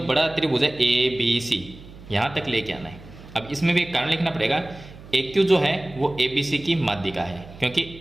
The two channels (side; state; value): right; noise; hum, 18 dB below the sound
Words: बड़ा त्रिभुज है ए बी सी यहाँ तक लेके आना है। अब इसमें भी एक कारण लिखना पड़ेगा, ए क्यू जो है वो ए बी सी की माध्यिका है, क्योंकि